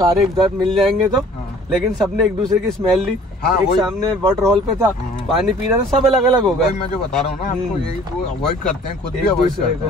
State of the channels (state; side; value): normal; both; correlation 0.52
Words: एक साथ मिल जाएंगे तो। लेकिन सबने एक दूसरे की स्मेल ली। एक सामने वाटर हॉल पे था, पानी पी रहा था, सब अलग अलग हो गए। मैं जो बता रहा हूँ ना आपको, यही वो अवॉइड करते हैं, खुद भी अवॉइड करते